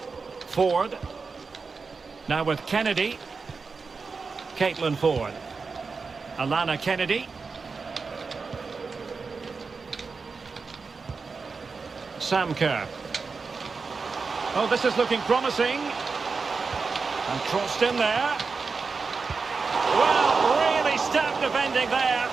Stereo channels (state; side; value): quieter; left; 4.7 dB